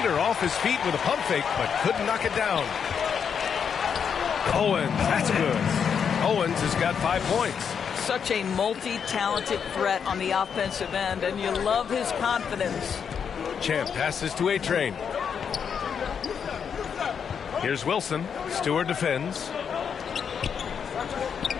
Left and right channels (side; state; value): right; quieter; 7.1 dB